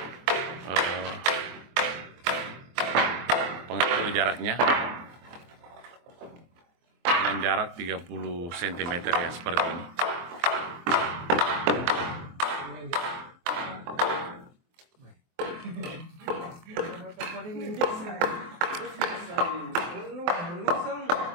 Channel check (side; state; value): left; late; 23 ms